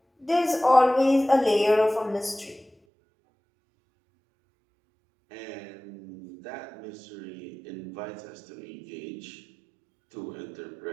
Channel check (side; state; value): left; drops out; at 2.7 s